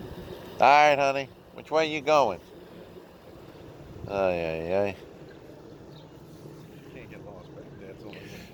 All right, honey. Which way you going? Oh, yeah. Can't get lost back there. It's only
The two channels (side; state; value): both; identical; correlation 1.00